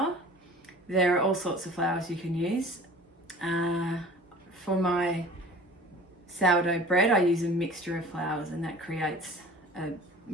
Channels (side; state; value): both; normal; correlation 0.44